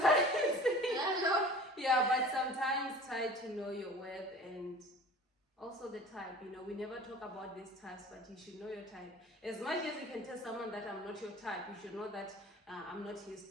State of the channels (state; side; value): normal; both; correlation 0.43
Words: but sometimes try to know your worth and also the type. You know, we never talk about these types, but you should know your type. As much as you can tell someone that I'm not your type, you should know that I'm not his